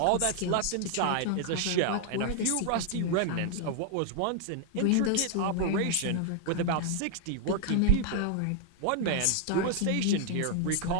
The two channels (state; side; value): different; both; correlation 0.00